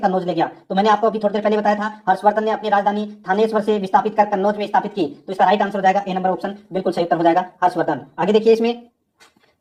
ले गया? तो मैंने आपको अभी थोड़ी देर पहले बताया था, हर्षवर्धन ने अपनी राजधानी थानेश्वर से विस्थापित कर कन्नौज में स्थापित की। तो इसका राइट आंसर हो जाएगा ए नंबर ऑप्शन बिल्कुल सही उत्तर हो जाएगा हर्षवर्धन। आगे देखिए, इसमें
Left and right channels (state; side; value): identical; both; correlation 1.00